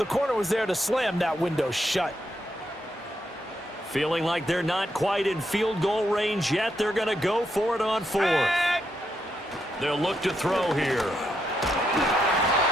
corner was there to slam that window shut. Feeling like they're not quite in field goal range yet. They're going to go for it on 4th. They'll look to throw here.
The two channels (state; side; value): normal; both; correlation 0.80